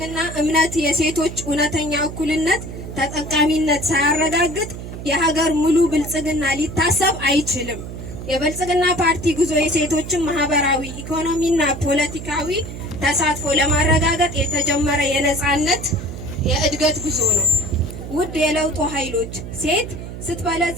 እምነት የሴቶች እውነተኛ እኩልነት ተጠቃሚነት ሳያረጋግጥ የሀገር ሙሉ ብልጽግና ሊታሰብ አይችልም። የብልጽግና ፓርቲ ጉዞ የሴቶችን ማህበራዊ፣ ኢኮኖሚና ፖለቲካዊ ተሳትፎ ለማረጋገጥ የተጀመረ የነጻነት የእድገት ጉዞ ነው። ውድ የለውጡ ኃይሎች፣ ሴት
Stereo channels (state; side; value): noise; right; hum, 9 dB below the sound